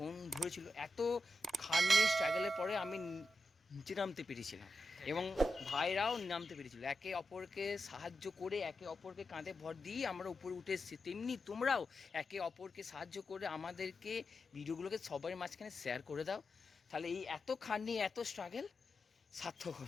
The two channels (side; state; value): both; normal; correlation 0.88